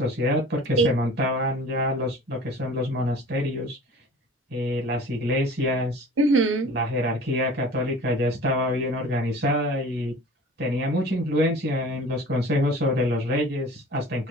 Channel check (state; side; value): normal; both; correlation 0.43